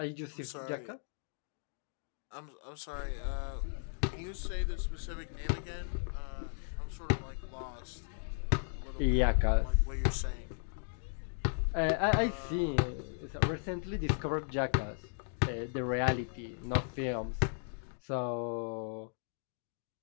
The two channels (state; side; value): silent; right; digital silence